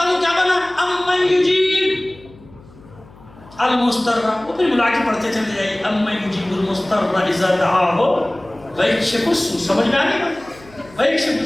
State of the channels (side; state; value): left; noise; hum, 24 dB below the sound